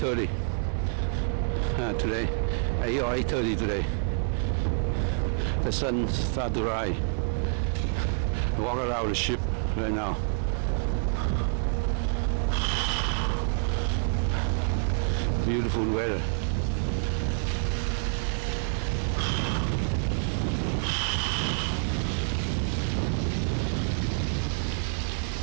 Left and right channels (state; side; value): silent; left; 60 dB below the other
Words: today, 8 or 8:30 today. The sun starts to rise. Walk around the ship right now. Beautiful weather.